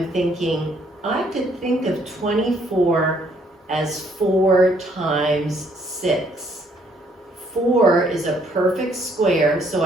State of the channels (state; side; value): normal; both; correlation 0.67